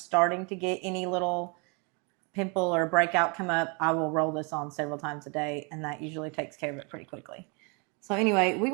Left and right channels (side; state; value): left; quieter; 33.0 dB